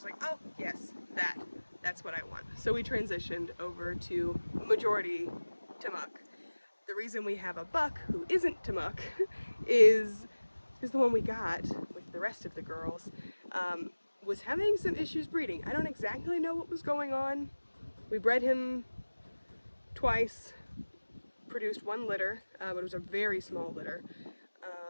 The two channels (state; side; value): inverted; both; correlation -1.00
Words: like, oh yes, that's what I want. So we transitioned over to majority Tamuk. The reason we have a buck who isn't Tamuk is the one we got with the rest of the girls was having some issues breeding. I don't exactly know what was going on. We bred him twice, produced one litter, but it was a very small litter,